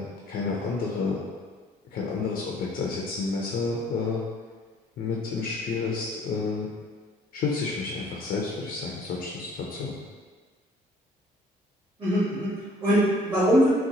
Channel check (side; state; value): both; normal; correlation 0.58